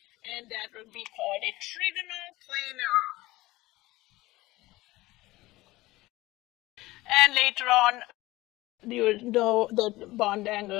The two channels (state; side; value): quieter; right; 19.1 dB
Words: and that will be called a trigonal planar. And later on, you will know the bond